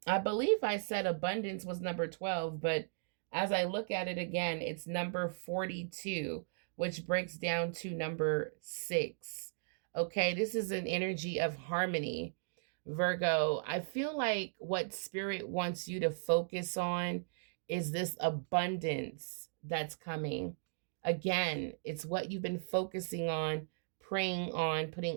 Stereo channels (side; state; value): left; silent; digital silence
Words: believe I said abundance was number 12, but as I look at it again, it's number 42, which breaks down to number 6. Okay, this is an energy of harmony, Virgo. I feel like what Spirit wants you to focus on is this abundance that's coming. Again, it's what you've been focusing on, praying on,